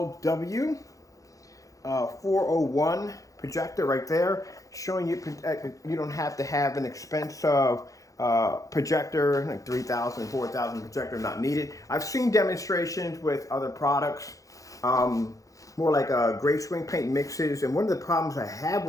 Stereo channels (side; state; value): right; late; 0.16 ms